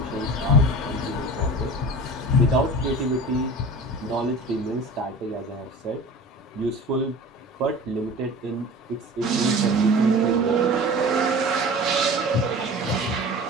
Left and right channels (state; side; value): normal; both; correlation 0.37